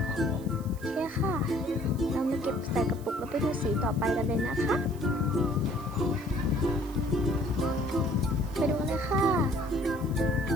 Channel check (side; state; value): right; noise; hiss, 22 dB below the sound